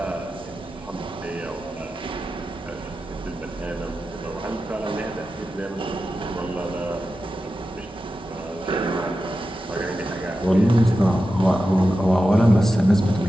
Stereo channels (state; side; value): normal; both; correlation 0.92